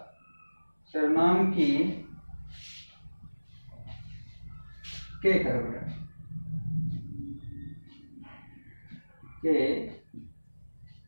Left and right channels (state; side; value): inverted; both; correlation -1.00